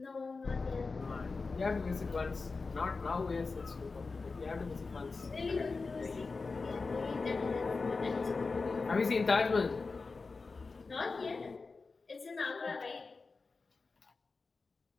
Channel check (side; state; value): right; quieter; 4.2 dB